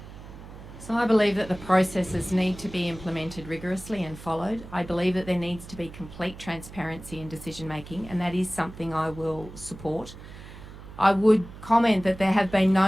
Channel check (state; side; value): noise; right; hum, 15 dB below the sound